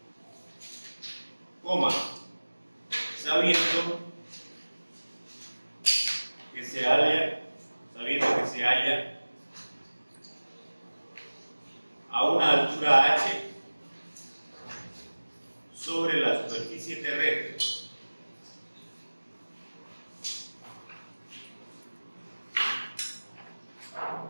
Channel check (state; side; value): inverted; both; correlation -1.00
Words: Coma, sabiendo que se halla a una altura h sobre la superficie terrestre.